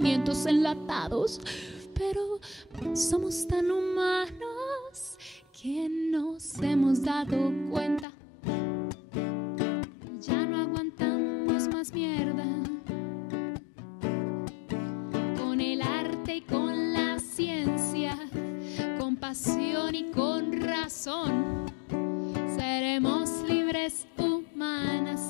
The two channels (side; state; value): right; drops out; at 8.1 s